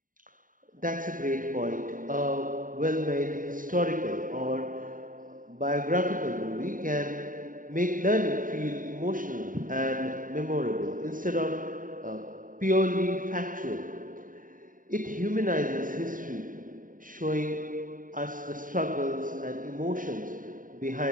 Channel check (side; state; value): left; late; 0.39 ms